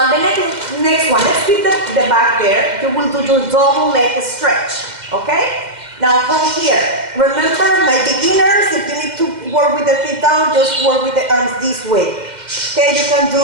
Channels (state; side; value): late; left; 2.1 ms